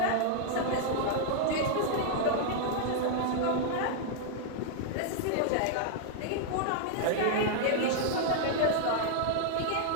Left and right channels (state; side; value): different; both; correlation -0.01